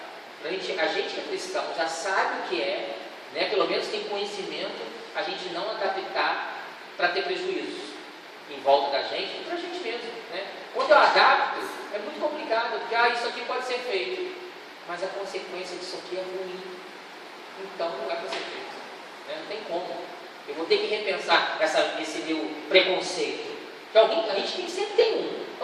A gente que é cristão já sabe o que né? Pelo menos tem conhecimento, a gente não adaptar para ter prejuízos em volta da gente e para a gente mesmo, né? Quando eu adapto, é muito complicado, porque isso aqui pode ser feito, mas a consequência disso aqui é ruim, então não é para ser feito, né? Não tem como. Eu vou ter que repensar esse meu preconceito, que a gente sempre tem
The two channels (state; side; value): identical; both; correlation 1.00